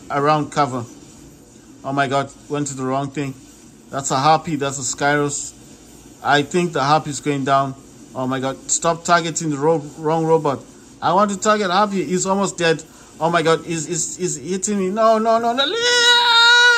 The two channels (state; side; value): identical; both; correlation 1.00